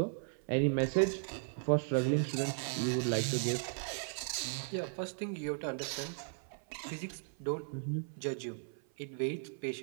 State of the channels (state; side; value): silent; left; 53 dB below the other